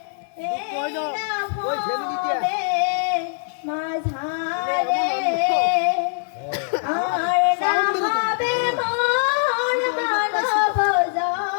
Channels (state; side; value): silent; right; 64 dB below the other